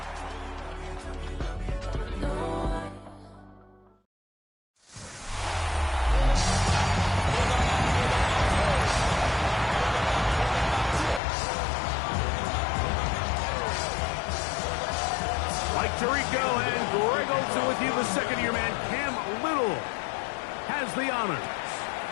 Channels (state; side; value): drops out; right; at 11.2 s